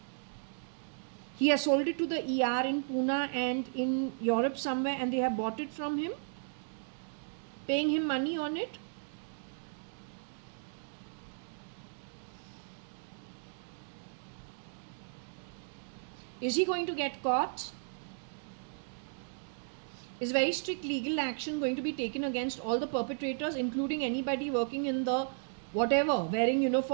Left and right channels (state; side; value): silent; left; digital silence